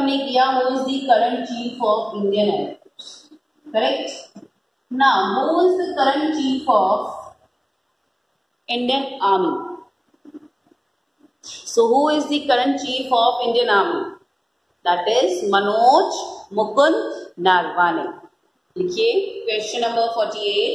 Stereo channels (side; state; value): both; identical; correlation 1.00